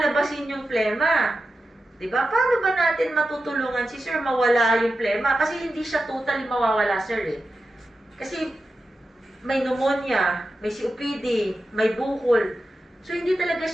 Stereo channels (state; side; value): normal; both; correlation 0.91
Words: yung plema? Diba? Paano ba natin matutulungan si sir mawala yung plema? Kasi hindi siya totally mawawala, sir, eh. Kasi may pneumonia, may COPD, may bukol. So, hindi talaga